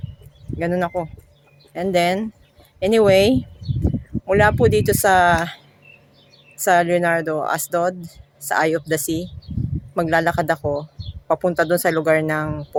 Ganun ako. And then, anyway, mula po dito sa Leonardo Asdod, sa Eye of the Sea, maglalakad ako papunta doon sa lugar ng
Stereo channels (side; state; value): both; identical; correlation 1.00